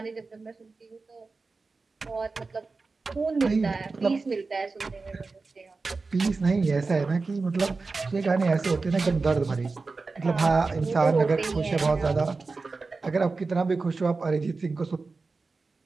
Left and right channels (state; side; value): quieter; left; 4.0 dB